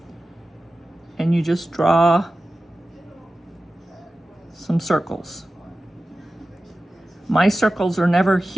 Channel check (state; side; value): normal; both; correlation 0.95